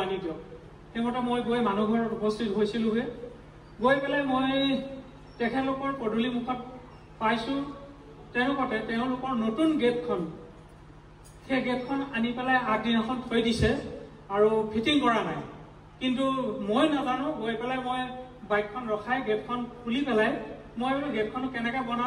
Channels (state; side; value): identical; both; correlation 1.00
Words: আনি দিয়ক। সেইমতে মই গৈ মানুহ ঘৰত উপস্থিত হৈছিলোগৈ। গৈ পেলাই মই তেখেতলোকৰ পদূলি মুখত পাইছোঁ তেনেকুৱাতে তেওঁলোকৰ নতুন গেটখন সেই গেটখন আনি পেলাই আগদিনাখন থৈ দিছে আৰু ফিটিং কৰা নাই। কিন্তু মই নাজানো, গৈ পেলাই মই বাইকখন ৰখাই গেটখন খুলি পেলাই মই বোলো গেটখন কেনেকৈ